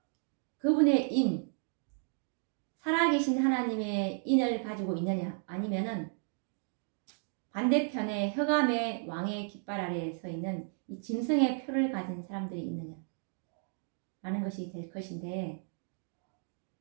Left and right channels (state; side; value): silent; left; 55 dB below the other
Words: 그분의 인, 살아계신 하나님의 인을 가지고 있느냐, 아니면은 반대편에 흑암의 왕의 깃발 아래에 서 있는 이 짐승의 표를 가진 사람들이 있느냐 라는 것이 될 것인데,